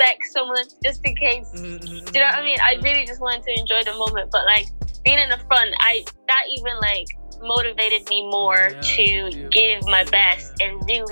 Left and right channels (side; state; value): both; inverted; correlation -1.00